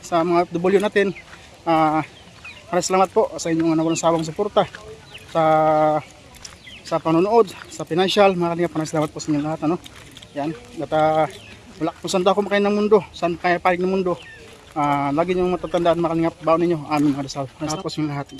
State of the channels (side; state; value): both; identical; correlation 1.00